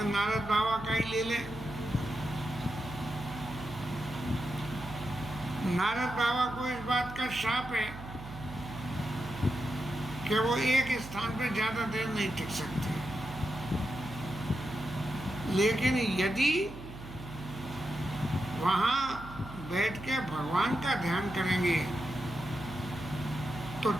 नारद बाबा का ही ले लें। नारद बाबा को इस बात का शाप है कि वो एक स्थान पर ज्यादा देर नहीं टिक सकते, लेकिन यदि वहां बैठ के भगवान का ध्यान करेंगे तो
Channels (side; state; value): right; noise; hum, 13 dB below the sound